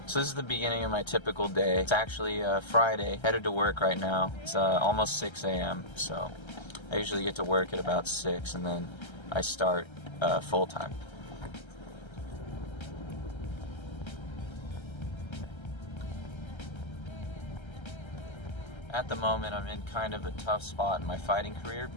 So this is the beginning of my typical day. It's actually Friday, headed to work right now. It's almost 6 a.m. so I usually get to work at about 6 and then I start full time. At the moment, I'm in kind of a tough spot in my fighting career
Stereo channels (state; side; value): late; right; 1.3 ms